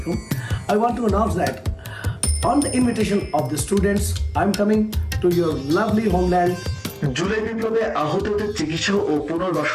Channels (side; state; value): both; identical; correlation 1.00